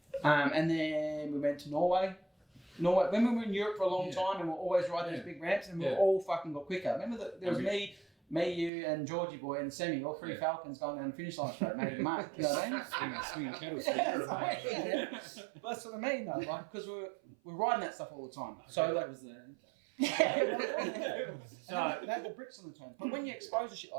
And then we went to Norway. When we were in Europe for a long Yeah. time, and we were always riding Yeah. those big ramps, and we Yeah. all fucking got quicker. Remember that there was Okay. me, you, and Georgie boy, and Semi, all three Yeah. Falcons going down the finish line straight, making mark. You know what I mean? Swinging kettles. Yeah, that's right, yeah. That's what I mean, though, like because we're riding that stuff all the time. So like, was there. yeah, they had the bricks on the turn. But when you expose to shit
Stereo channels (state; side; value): drops out; left; at 8.7 s